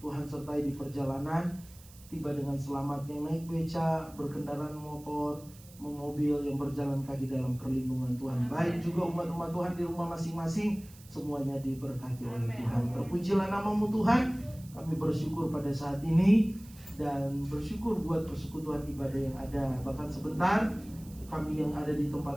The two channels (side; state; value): right; noise; hiss, 22 dB below the sound